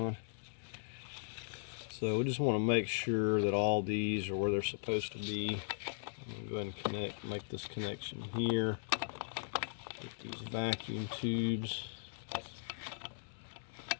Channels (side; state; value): right; silent; digital silence